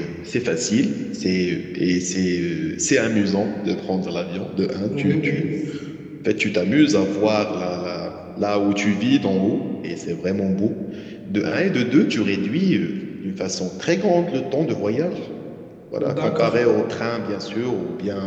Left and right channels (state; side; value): identical; both; correlation 1.00